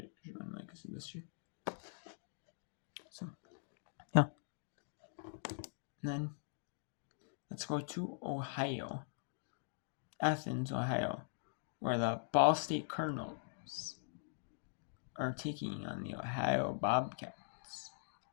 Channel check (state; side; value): silent; right; digital silence